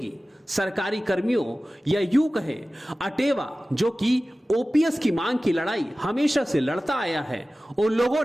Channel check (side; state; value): both; normal; correlation 0.96